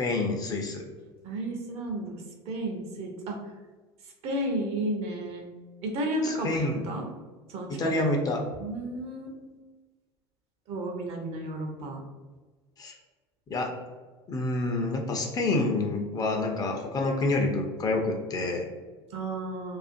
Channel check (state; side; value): normal; both; correlation 0.30